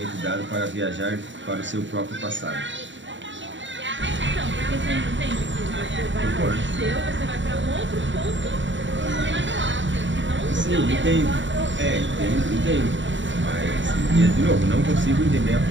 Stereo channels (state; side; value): late; left; 0.54 ms